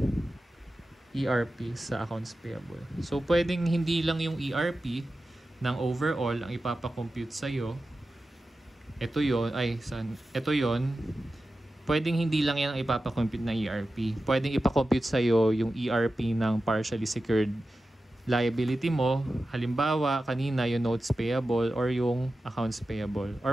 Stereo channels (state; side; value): normal; both; correlation 0.93